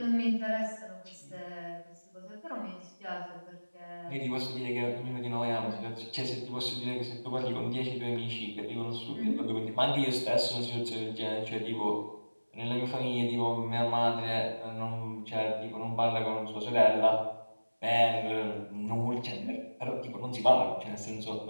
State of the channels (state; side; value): inverted; both; correlation -1.00